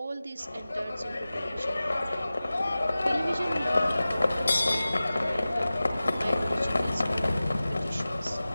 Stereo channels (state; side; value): inverted; both; correlation -0.96